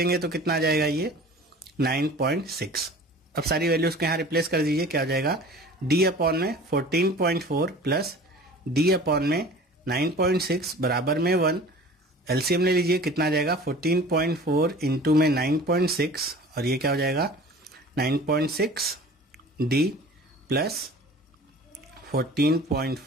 तो कितना आ जाएगा ये 9.6। अब सारी वैल्यूज को यहाँ रिप्लेस कर दीजिए, क्या हो जाएगा D/में 14.4 + D/में 9.6 बराबर में 1। LCM ले लीजिए, कितना आ जाएगा 14.4 इंटू में 9.6, और ये क्या हो जाएगा 9.6 D +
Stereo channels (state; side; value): normal; both; correlation 0.43